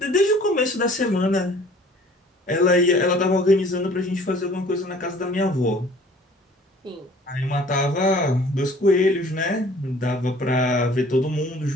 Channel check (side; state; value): both; normal; correlation 0.52